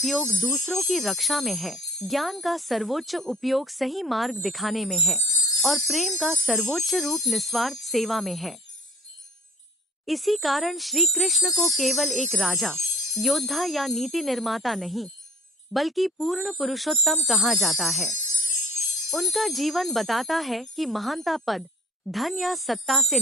दूसरों की रक्षा में है, ज्ञान का सर्वोच्च उपयोग सही मार्ग दिखाने में है और प्रेम का सर्वोच्च रूप निस्वार्थ सेवा में है। इसी कारण श्री कृष्ण को केवल एक राजा, योद्धा या नीति निर्माता नहीं, बल्कि पूर्ण पुरुषोत्तम कहा जाता है। उनका जीवन बताता है कि महानता पद, धन या सत्ता से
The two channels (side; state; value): both; normal; correlation 0.49